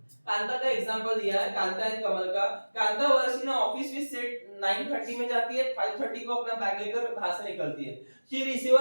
कांता का एग्जांपल दिया है, कांता एंड कमल का। कांता वर्ष इन ऑफिस विद सेट 9:30 में जाती है, 5:30 को अपना बैग लेकर वहां से निकलती है। She receive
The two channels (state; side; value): inverted; both; correlation -1.00